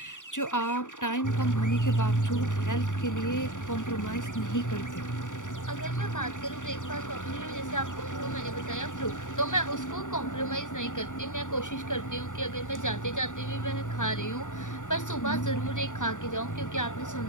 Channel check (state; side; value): late; right; 0.86 ms